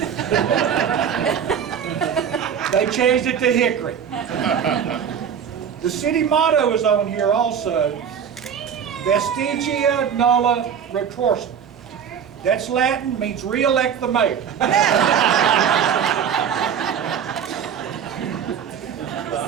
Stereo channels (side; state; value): left; quieter; 7.9 dB